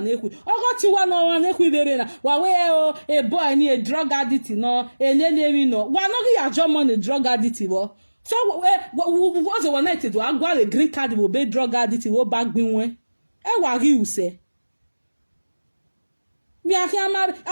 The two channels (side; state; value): both; inverted; correlation -1.00